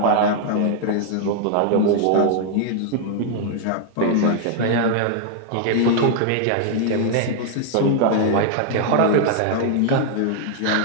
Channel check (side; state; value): both; different; correlation 0.00